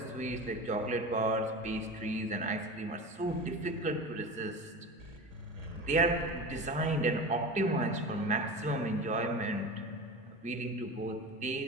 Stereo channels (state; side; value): normal; both; correlation 0.29